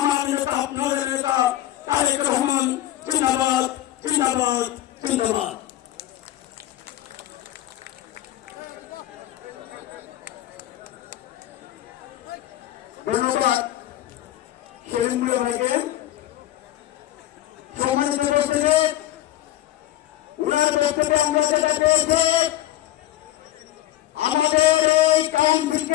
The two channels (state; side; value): quieter; right; 14.3 dB